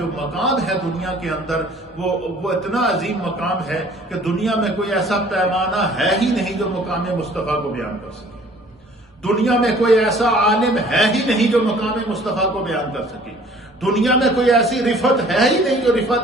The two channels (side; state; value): both; normal; correlation 0.53